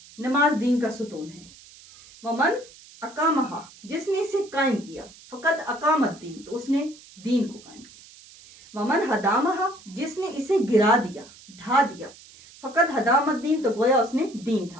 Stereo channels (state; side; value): noise; right; hiss, 22 dB below the sound